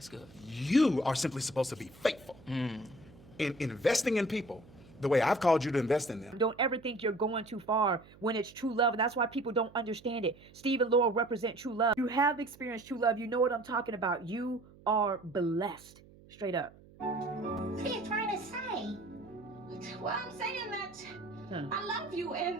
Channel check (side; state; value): right; noise; hum, 23 dB below the sound